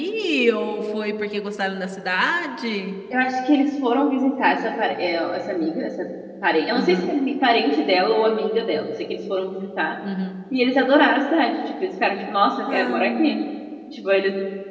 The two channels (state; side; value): identical; both; correlation 1.00